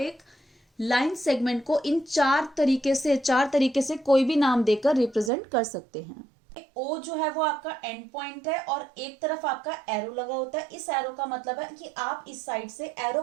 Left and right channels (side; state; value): left; drops out; at 5.3 s